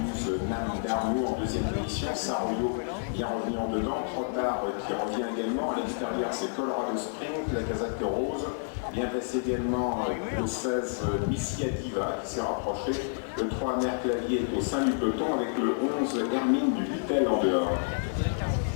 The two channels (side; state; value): right; silent; digital silence